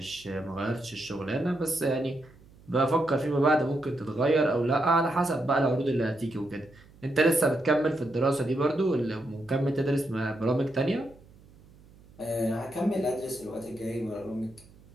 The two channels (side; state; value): right; noise; hum, 25 dB below the sound